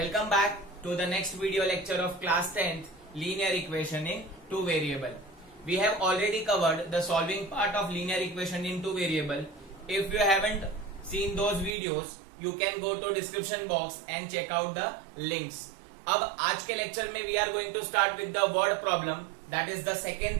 back to the next video lecture of class 10th linear equation in two variable. We have already covered the solving part of linear equation in two variable. If you haven't seen those videos, you can go to description box and check out the links. अब आज के lecture में we are going to start with the word problem. That is the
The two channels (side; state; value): left; drops out; at 11.8 s